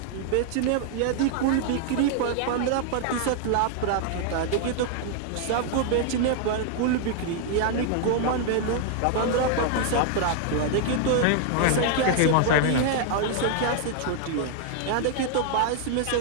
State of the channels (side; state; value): both; different; correlation 0.00